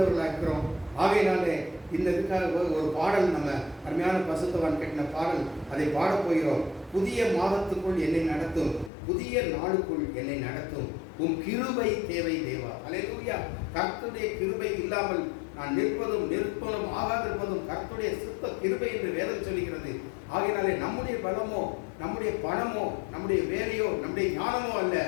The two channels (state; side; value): drops out; right; at 8.9 s